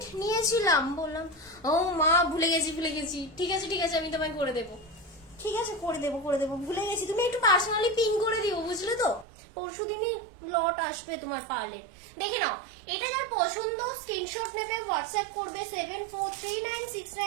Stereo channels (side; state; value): left; drops out; at 9.2 s